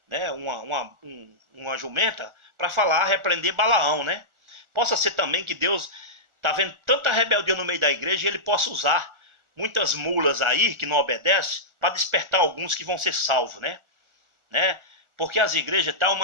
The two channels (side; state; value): left; late; 1.4 ms